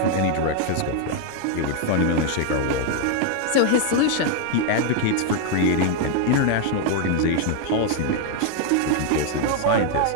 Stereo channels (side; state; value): both; different; correlation 0.00